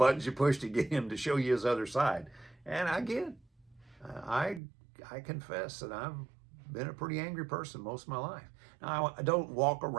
you push to get him to show you his other side. And I confess that I've been a pretty angry person most of my life. Now, I don't walk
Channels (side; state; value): left; drops out; at 4.6 s